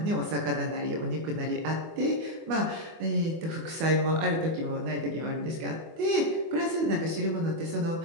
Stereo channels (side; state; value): left; late; 24 ms